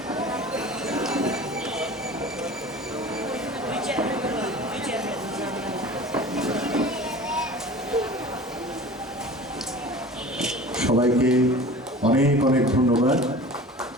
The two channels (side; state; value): both; normal; correlation 0.39